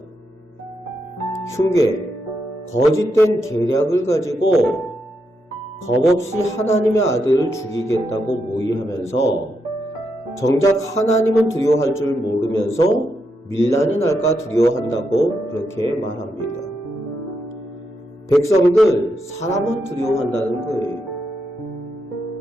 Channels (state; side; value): normal; both; correlation 0.82